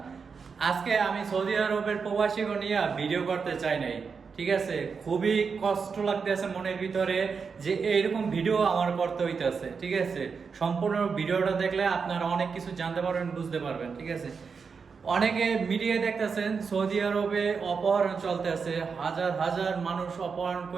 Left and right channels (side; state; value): left; quieter; 5.5 dB